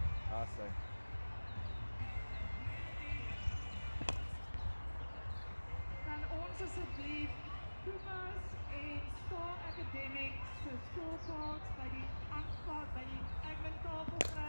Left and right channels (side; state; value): both; inverted; correlation -1.00